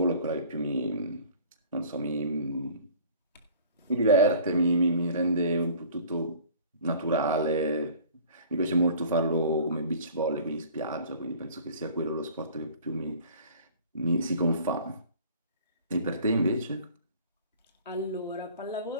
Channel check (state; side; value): inverted; both; correlation -0.47